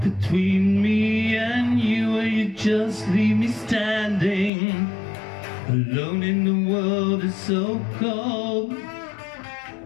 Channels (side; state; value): right; drops out; at 4.5 s